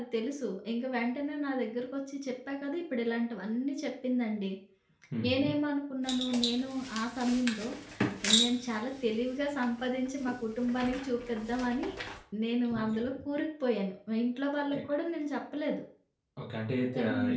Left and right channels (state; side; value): identical; both; correlation 1.00